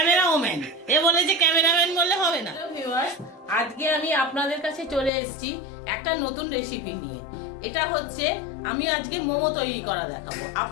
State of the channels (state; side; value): drops out; right; at 5.1 s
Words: এ বলেছে ক্যামেরাম্যান বললে হবে না। আজকে আমি আপনাদের কাছে চলে এসেছি একটা নতুন রেসিপি নিয়ে। এটা হচ্ছে আমি আজকে মোমো তৈরি করা দেখাবো।